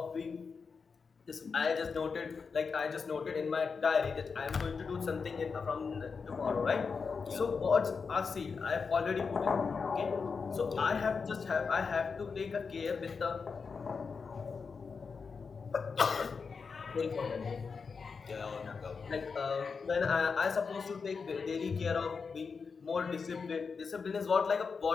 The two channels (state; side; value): quieter; right; 5.2 dB